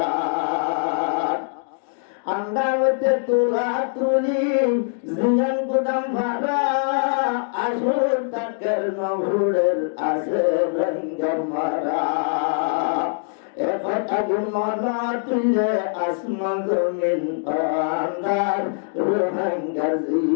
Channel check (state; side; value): silent; right; digital silence